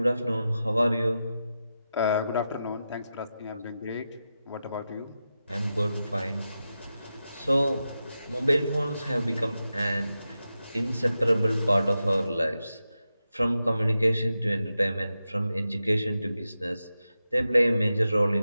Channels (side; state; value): both; inverted; correlation -0.90